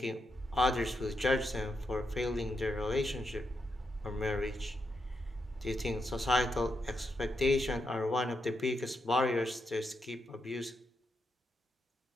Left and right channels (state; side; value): normal; both; correlation 0.83